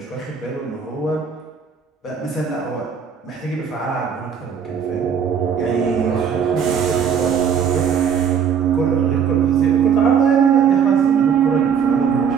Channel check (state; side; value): quieter; left; 7.3 dB